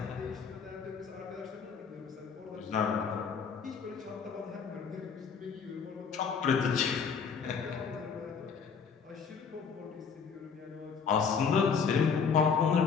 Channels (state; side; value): quieter; right; 6.1 dB